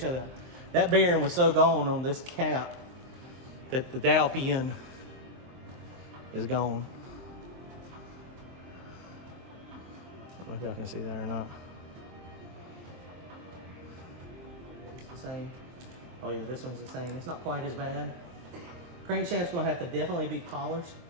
you that. That bearing was so gone on this cap that the dowel pin is gone. I don't know if y'all can see that or not. It's the same. Oh yeah, this one's the same. It's not quite as bad. Crankshaft's gonna have to definitely be polished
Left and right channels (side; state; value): left; late; 23 ms